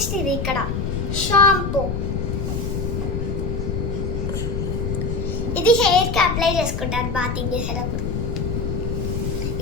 ఇది ఇక్కడ షాంపూ. ఇది హెయిర్ కి అప్లై చేసుకుంటారు బాతింగ్ చేసేటప్పుడు.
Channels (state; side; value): noise; left; rumble, 1 dB below the sound